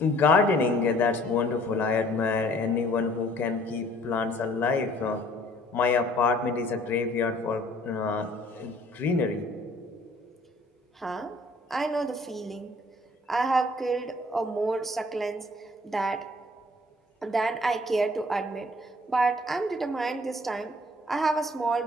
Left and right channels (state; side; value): normal; both; correlation 0.56